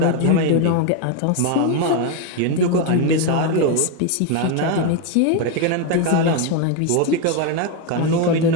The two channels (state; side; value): different; both; correlation 0.02